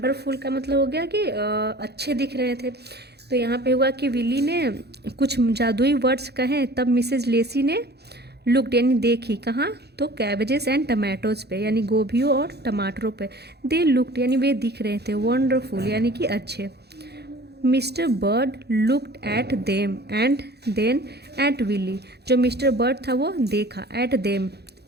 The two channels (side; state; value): left; late; 0.48 ms